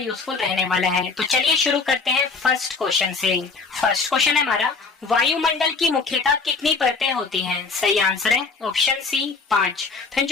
रहने वाला है। तो चलिए शुरू करते हैं फर्स्ट क्वेश्चन से। फर्स्ट क्वेश्चन है हमारा, वायुमंडल की मुख्यतः कितनी परतें होती हैं? सही आंसर है ऑप्शन सी 5। फिर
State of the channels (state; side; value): quieter; right; 4.5 dB